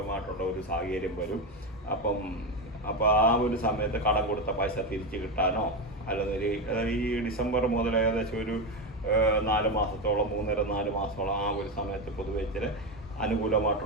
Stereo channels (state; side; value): normal; both; correlation 0.13